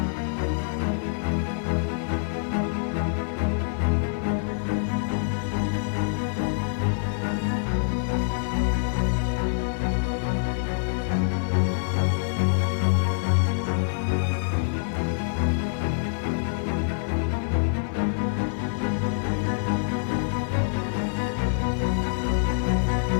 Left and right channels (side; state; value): right; silent; digital silence